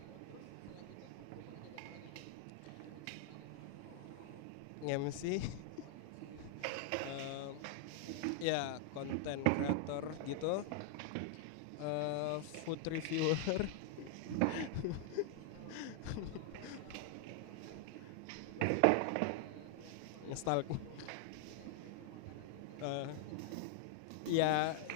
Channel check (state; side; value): different; both; correlation 0.00